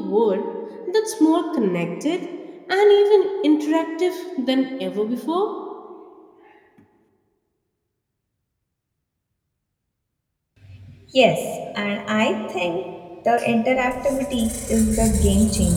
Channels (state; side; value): identical; both; correlation 1.00